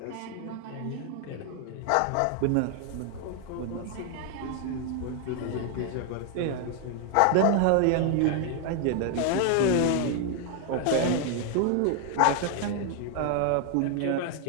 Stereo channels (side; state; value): both; different; correlation 0.00